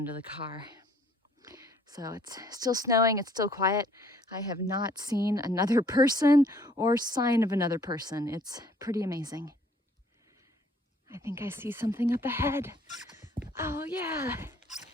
to the car. So it's still snowing, it's still quiet. I have not seen another person or sign of another person. It's pretty amazing. I think I see something up ahead. Oh yeah,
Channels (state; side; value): normal; both; correlation 0.60